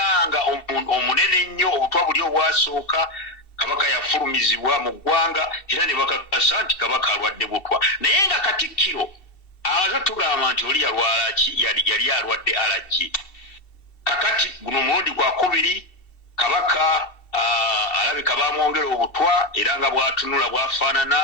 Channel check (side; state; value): right; late; 2.7 ms